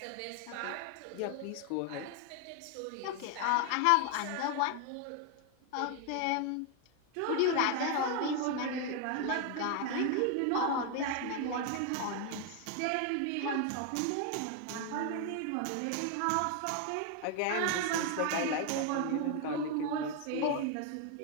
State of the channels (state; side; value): different; both; correlation 0.00